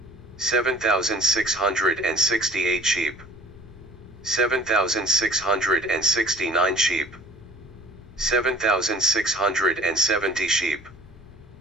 7,668 sheep, 7,669 sheep, 7,670 sheep,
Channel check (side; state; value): both; normal; correlation 0.49